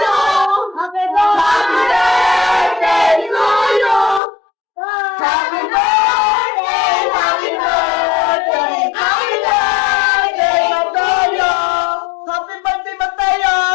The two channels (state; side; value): drops out; right; at 4.2 s